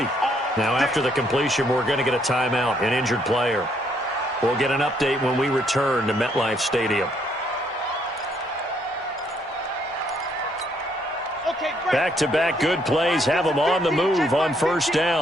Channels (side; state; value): both; normal; correlation 0.70